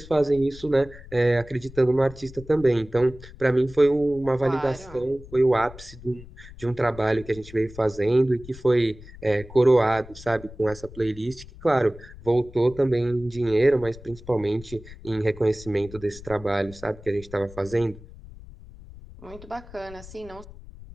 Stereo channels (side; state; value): left; noise; rumble, 18 dB below the sound